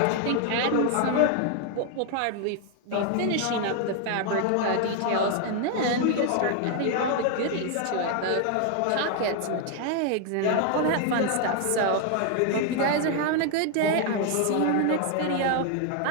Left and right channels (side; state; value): both; different; correlation 0.00